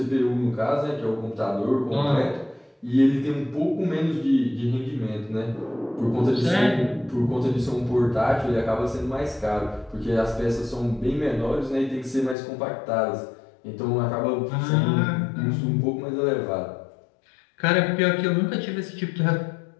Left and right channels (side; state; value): right; drops out; at 12.4 s